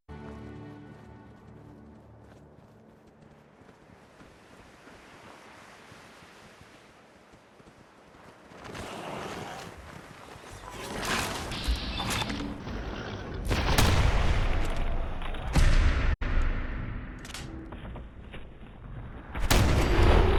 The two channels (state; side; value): identical; both; correlation 1.00